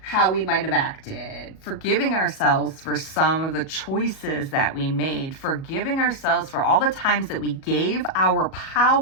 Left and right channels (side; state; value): right; late; 37 ms